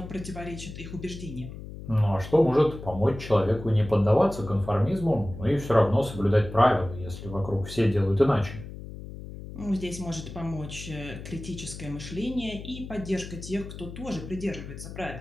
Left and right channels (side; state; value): left; noise; hum, 12 dB below the sound